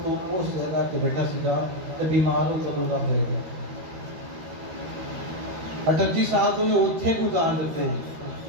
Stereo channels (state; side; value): late; left; 13 ms